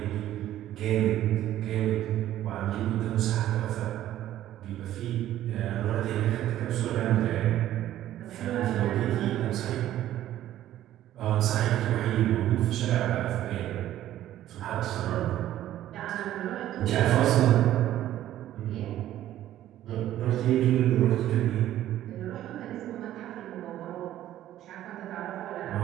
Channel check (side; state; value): left; quieter; 12.9 dB